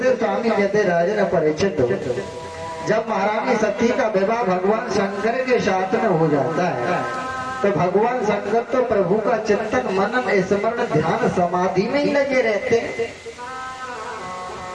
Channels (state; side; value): identical; both; correlation 1.00